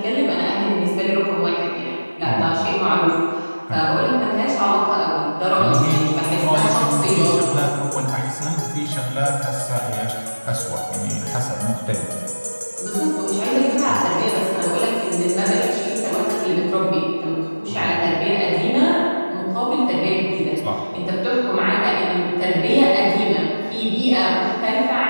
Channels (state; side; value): inverted; both; correlation -1.00